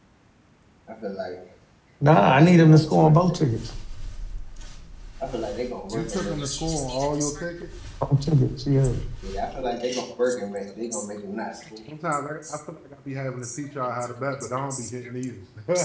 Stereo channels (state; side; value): identical; both; correlation 1.00